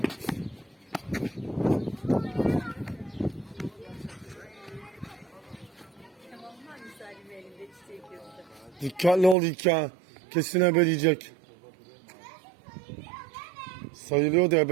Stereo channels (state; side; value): drops out; left; at 9.3 s